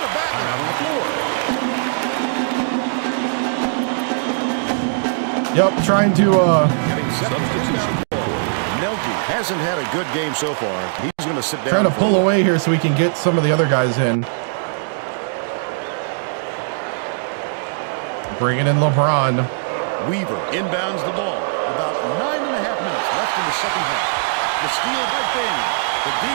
a battler on the floor. Yep, trying to Getting set on the inbound ball. Nelke hasn't had a good game so far. He's going to sit down. trying to pull away here so we can get some of the other guys in. Bringing in LeBron. Weaver inbounds the ball. About 9.5 minutes left in the second half. The steal by Bing. The D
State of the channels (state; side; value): silent; left; digital silence